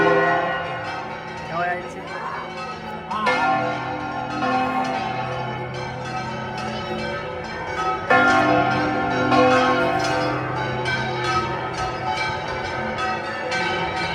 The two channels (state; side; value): identical; both; correlation 1.00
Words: ¿Qué voy a decir?